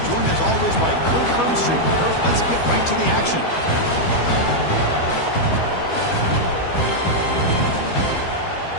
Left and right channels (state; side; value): late; right; 12 ms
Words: joined as always by Kirk Hermstreet. Kirk, let's get right to the action.